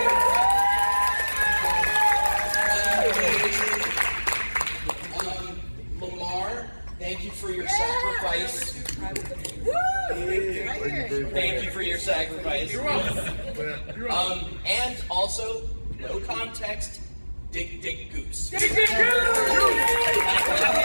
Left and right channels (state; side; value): inverted; both; correlation -1.00